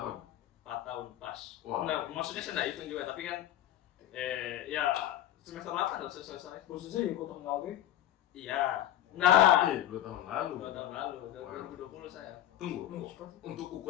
4 tahun pas. Wah. Nah, maksudnya saya nggak hitung juga, tapi kan ya semester 8 harus selesai. Khususnya di Kota Ngawi. Iya. Nah, 2 tahun lalu. 2 tahun lalu, 2020 saya. Tunggu, untuk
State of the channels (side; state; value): right; quieter; 12.4 dB